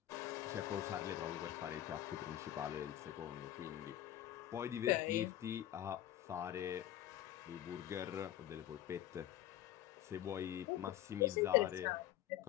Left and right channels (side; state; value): right; quieter; 12.8 dB